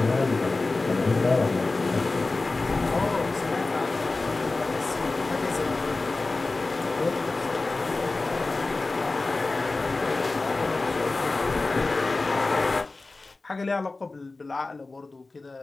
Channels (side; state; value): right; quieter; 3.4 dB